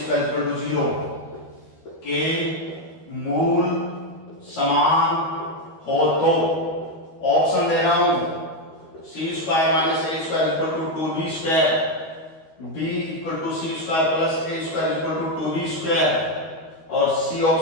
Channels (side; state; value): right; late; 13 ms